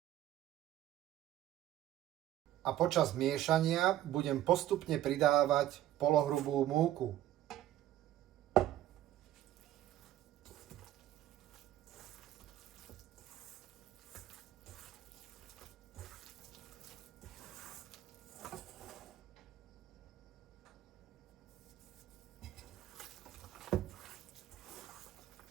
a počas miešania budem postupne pridávať polohrubú múku.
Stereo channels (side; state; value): left; quieter; 13.0 dB